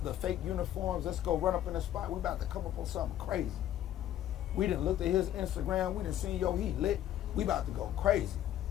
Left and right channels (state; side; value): quieter; right; 11.8 dB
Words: the fake uniforms, let's go run up in the spot, we about to come up on something crazy. We done looked at his Instagram, we done seen, yo, he lit, we about to go crazy.